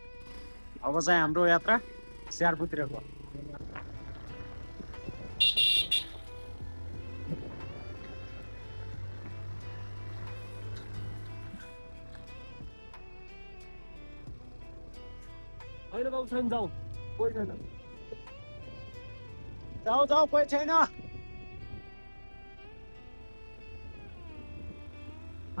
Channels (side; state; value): both; inverted; correlation -1.00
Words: अब चाहिँ हाम्रो यात्रा स्याहारपुतिरको होइन बाबु छैन जाउँ कोही छैन जाऊ जाऊ कोही छैन